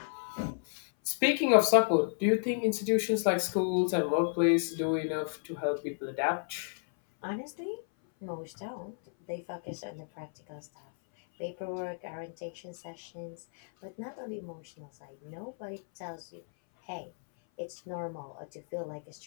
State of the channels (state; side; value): silent; right; 56 dB below the other